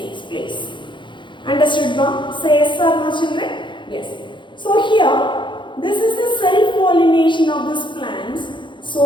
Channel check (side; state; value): right; late; 0.23 ms